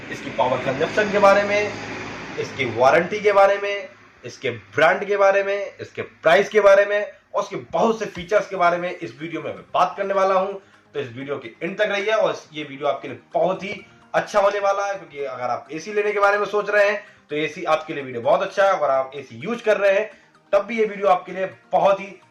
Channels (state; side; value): identical; both; correlation 1.00